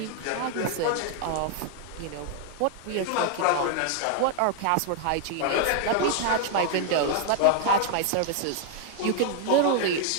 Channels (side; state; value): both; different; correlation 0.00